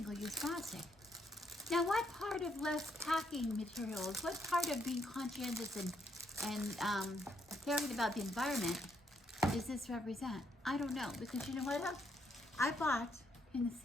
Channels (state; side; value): normal; both; correlation 0.75